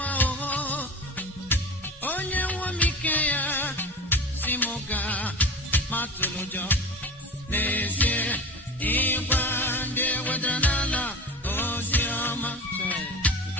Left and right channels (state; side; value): normal; both; correlation 0.34